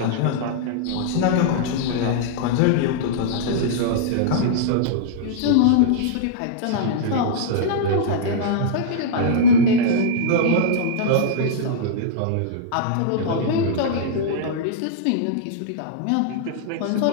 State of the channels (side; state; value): both; different; correlation -0.02